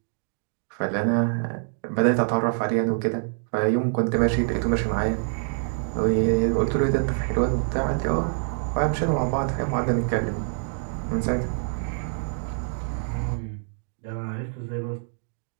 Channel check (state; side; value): silent; left; digital silence